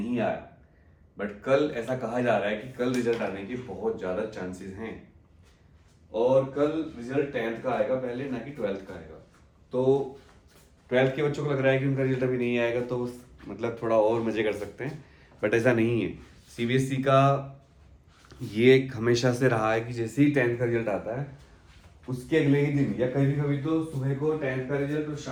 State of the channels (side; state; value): both; identical; correlation 1.00